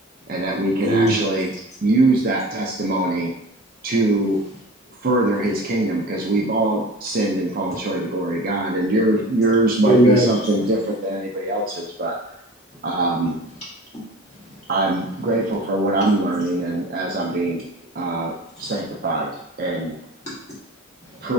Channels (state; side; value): normal; both; correlation 0.39